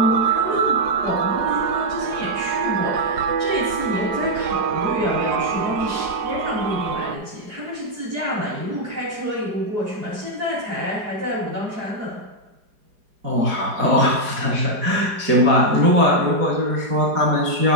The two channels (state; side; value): late; left; 4.8 ms